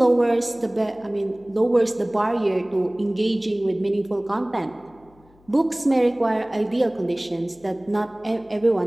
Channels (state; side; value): noise; left; hum, 29 dB below the sound